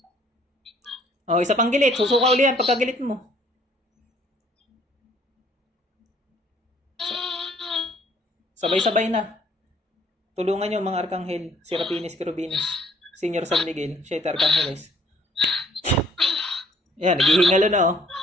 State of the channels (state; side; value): normal; both; correlation 0.61